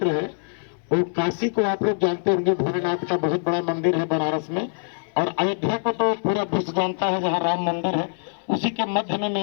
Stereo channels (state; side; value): silent; right; digital silence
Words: है वो काशी को आप लोग जानते होंगे, भोलेनाथ का बहुत बड़ा मंदिर है बनारस में। और अयोध्या को तो पूरा विश्व जानता है, जहाँ राम मंदिर है, उसी के मध्य में